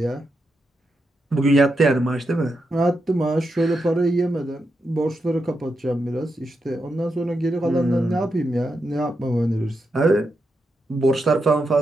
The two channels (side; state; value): both; normal; correlation 0.85